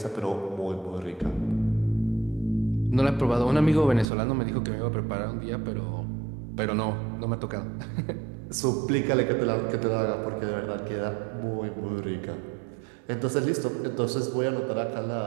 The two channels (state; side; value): drops out; left; at 4.0 s